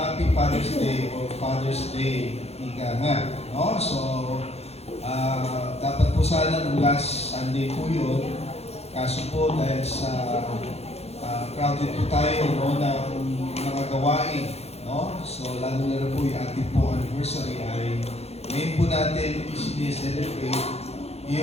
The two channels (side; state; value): right; late; 0.30 ms